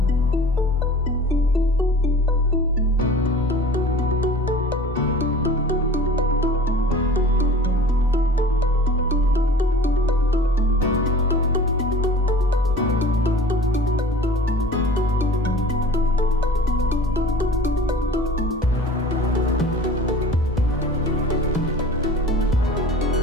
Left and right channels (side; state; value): both; normal; correlation 0.43